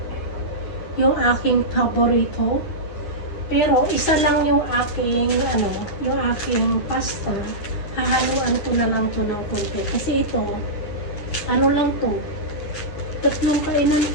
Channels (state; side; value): late; right; 9.7 ms